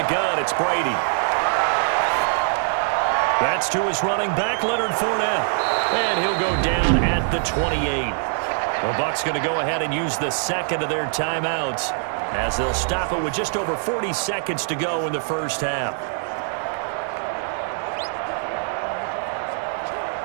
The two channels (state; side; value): silent; left; 58 dB below the other